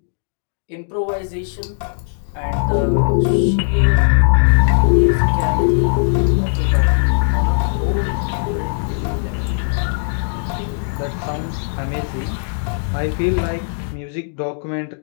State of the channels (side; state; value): right; silent; digital silence